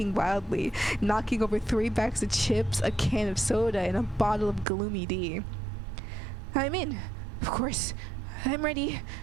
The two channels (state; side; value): drops out; left; at 4.7 s